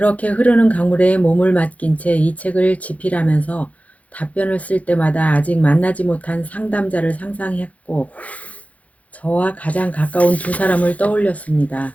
흐르는 강물에 몸을 맡긴 채 이 책을 집필하면서 답변을 쓸 때마다 아직 만나지 못한 상담자를 상상했고 저와 가장 가까운 두 사람을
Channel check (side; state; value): right; late; 0.068 ms